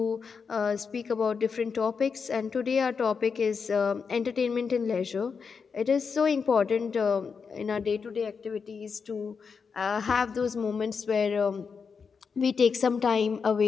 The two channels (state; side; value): quieter; right; 5.7 dB